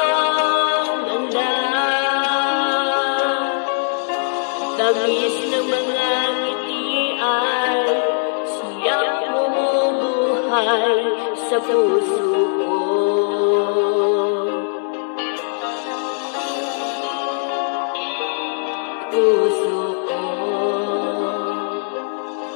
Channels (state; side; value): silent; right; digital silence